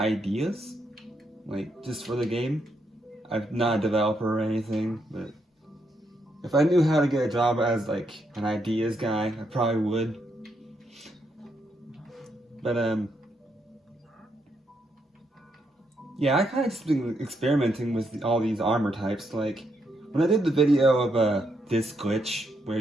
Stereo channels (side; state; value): both; normal; correlation 0.78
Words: like just for the game. I'm not a developer or anything, but if I knew how to get a job as like an ideas guy, I probably would. But yeah, I kind of just been experimenting with all these armor types. Like, when I did the video of this glitch, where